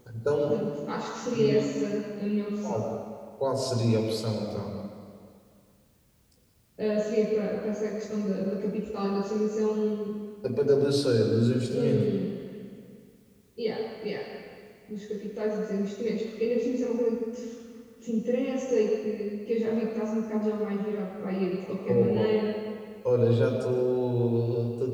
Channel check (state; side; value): identical; both; correlation 1.00